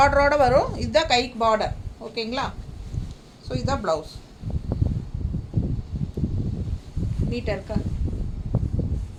வரும். இதுதான் கைக்கு பார்டர், ஓகேங்களா? ஸோ இதுதான் ப்ளவுஸ். நீட்டாக இருக்கா?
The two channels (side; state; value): both; identical; correlation 1.00